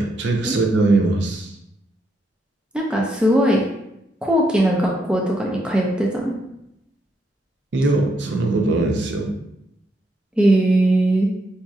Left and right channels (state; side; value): normal; both; correlation 0.78